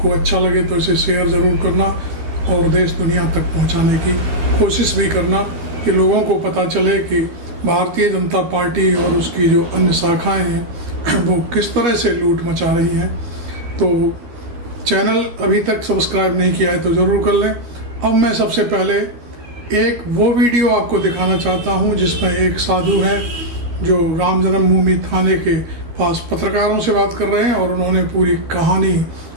अच्छा लगे तो इसे शेयर जरूर करना और देश दुनिया तक पहुंचाने की कोशिश भी करना कि लोगों को पता चले कि भारतीय जनता पार्टी और उसकी जो अन्य शाखाएं हैं वो किस तरह से लूट मचा रही हैं। तो चैनल अभी तक सब्सक्राइब नहीं किया है तो जरूर कर लें। अब मैं सबसे पहले एक वो वीडियो आपको दिखाना चाहता हूं जिसमें एक साधु हैं जो राम जन्मभूमि थाने के पास पत्रकारों से बात कर रहे हैं और उन्होंने पूरी कहानी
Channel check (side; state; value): left; late; 13 ms